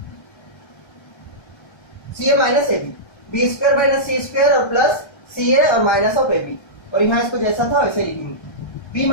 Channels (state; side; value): late; right; 1.3 ms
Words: CA minus AB, B² minus C² और प्लस CA और माइनस ऑफ AB। और यहां इसको जैसा था वैसे लिखेंगे, B